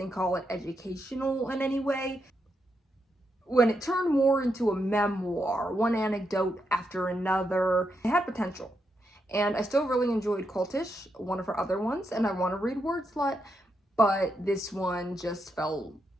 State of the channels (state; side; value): normal; both; correlation 0.82